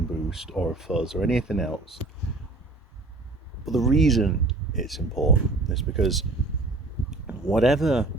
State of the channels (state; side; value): quieter; left; 3.1 dB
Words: boost or a fuzz or anything else. But the reason it's important is because whatever